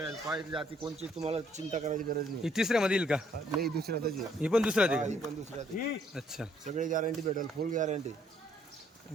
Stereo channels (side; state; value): both; normal; correlation 0.66